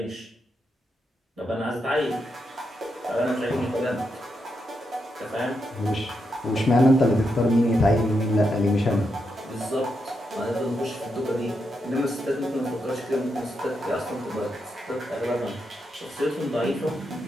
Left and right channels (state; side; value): normal; both; correlation 0.83